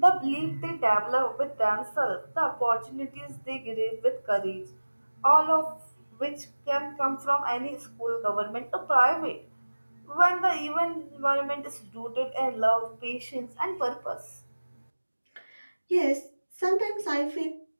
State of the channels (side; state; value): both; inverted; correlation -1.00